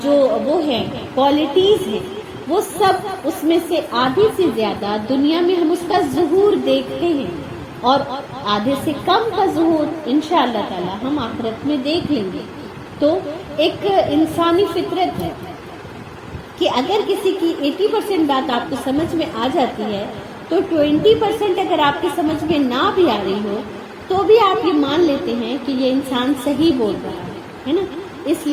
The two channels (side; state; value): both; identical; correlation 1.00